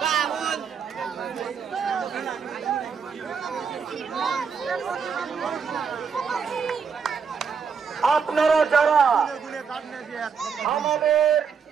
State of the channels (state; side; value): quieter; left; 6.1 dB